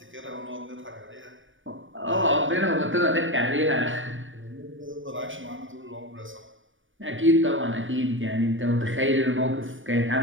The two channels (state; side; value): late; left; 0.57 ms